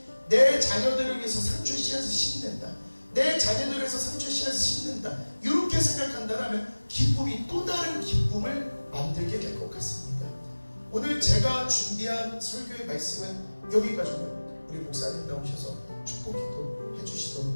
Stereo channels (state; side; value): inverted; both; correlation -1.00